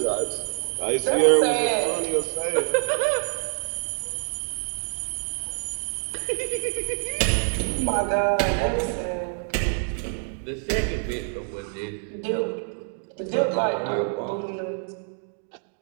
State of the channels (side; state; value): left; silent; 61 dB below the other